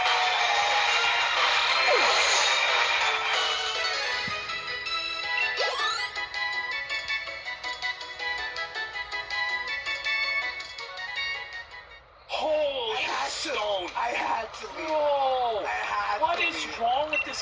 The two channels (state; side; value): identical; both; correlation 1.00